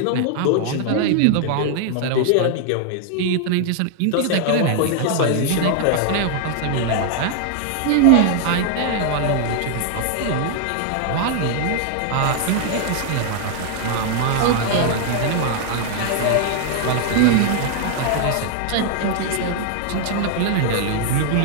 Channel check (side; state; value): both; different; correlation 0.00